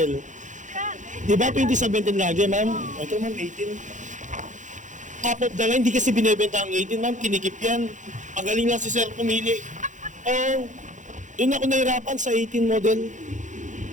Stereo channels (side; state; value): left; late; 0.36 ms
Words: Di ba 2017 lagi, ma'am? Ito, ma'am, 18. Top of the line, hindi kasi binibenta ang 18, ma'am. Kinikip yan. Pagaling lang si sir pumili. Oh, doon ako nahirapan sa 18 model.